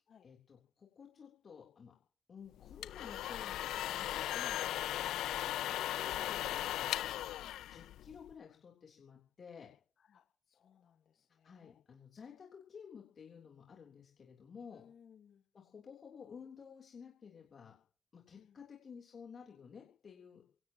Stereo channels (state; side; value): quieter; right; 12.2 dB